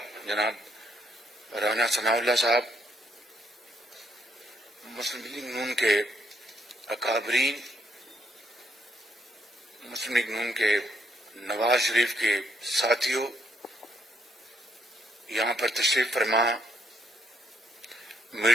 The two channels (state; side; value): normal; both; correlation 0.73